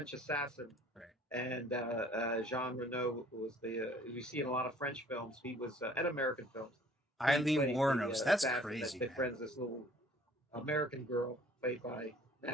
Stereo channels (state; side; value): normal; both; correlation 0.54